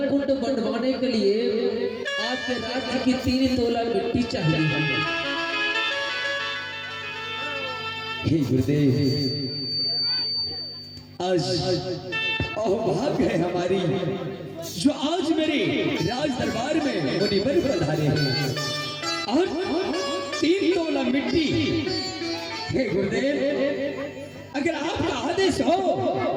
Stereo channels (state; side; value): identical; both; correlation 1.00